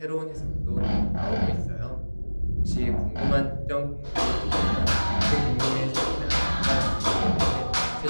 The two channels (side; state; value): both; inverted; correlation -1.00